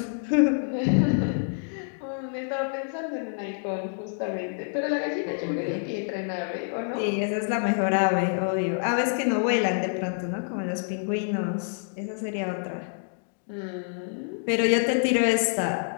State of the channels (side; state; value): right; silent; 60 dB below the other